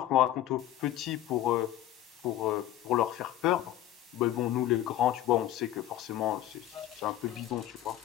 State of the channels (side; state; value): right; quieter; 13.0 dB